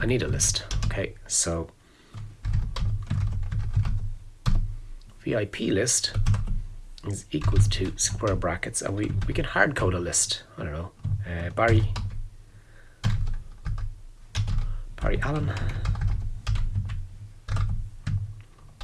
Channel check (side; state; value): both; identical; correlation 1.00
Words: a list. Okay, so VIP list is equals to square brackets, and we can hard code a list. I don't know, Barry Allen.